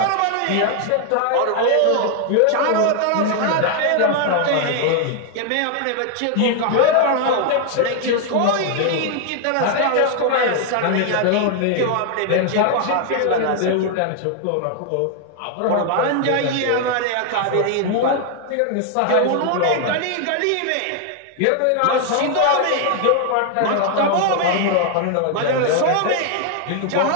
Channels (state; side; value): different; both; correlation 0.00